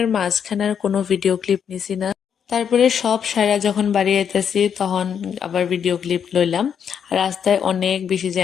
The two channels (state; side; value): quieter; right; 7.8 dB